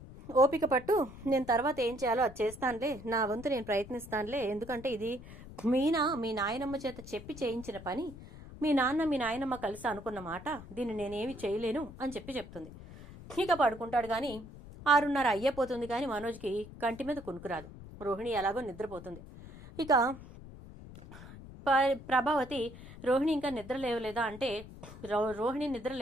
ఓపిక పట్టు, నేను తర్వాత ఏం చేయాలో అది చేస్తానులే, నా వంతు నేను ప్రయత్నిస్తానులే, ఎందుకంటే ఇది మీనా మీ నాయనమ్మ చేత చెప్పి చేయించిన పని, మీ నాన్న మీ నాయనమ్మ కలిసి అనుకున్న మాట, దీన్ని నేనేమి చేయలేను అని చెప్తుంది. ఇక పడుకుంటాడు. కానీ 6:30 అయ్యేపోతుంది కానీ మనోజ్కి కంటి మీద కునుకురాదు. రోహిణి ఎలాగో నిద్రపోతుంది. ఇక ప్రభావతి, రోహిణి ఇంకా నిద్ర లేవలేదా అంటే, రోహిణి నిద్ర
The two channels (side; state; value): left; noise; rumble, 16 dB below the sound